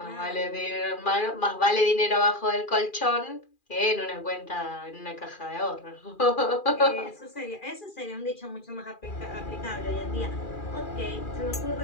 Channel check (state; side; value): late; right; 2.4 ms